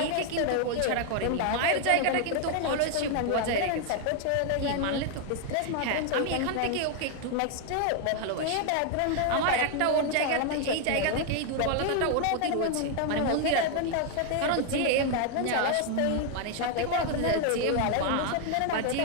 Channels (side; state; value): both; different; correlation 0.00